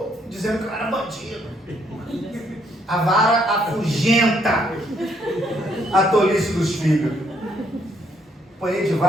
dizendo que eu era bandido. A vara afugenta a tolice dos filhos. Apanhei de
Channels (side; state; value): both; normal; correlation 0.70